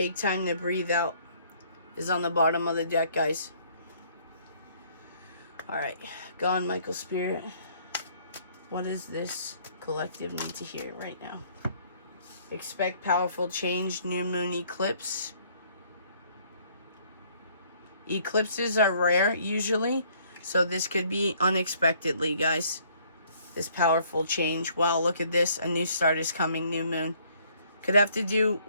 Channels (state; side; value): inverted; both; correlation -0.62